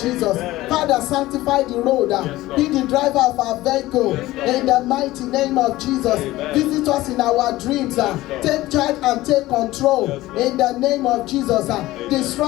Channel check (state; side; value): quieter; right; 17.2 dB